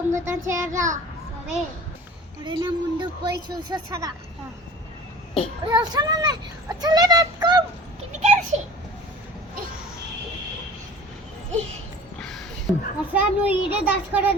చేయరా? సరే, ఎవరైనా ముందు పోయి చూసొస్తారా? అసలు నువ్వు ఈడే దాచుకోవడం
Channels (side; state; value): both; normal; correlation 0.42